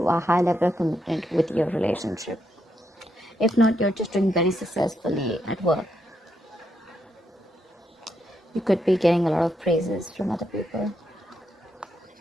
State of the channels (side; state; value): both; normal; correlation 0.80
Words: a high level of commitment with your relationship. If not, you're just doing very successfully at work. You could be getting a lot of praises from other people.